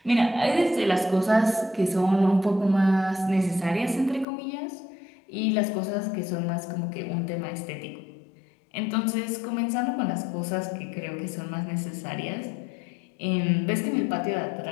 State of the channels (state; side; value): drops out; right; at 4.2 s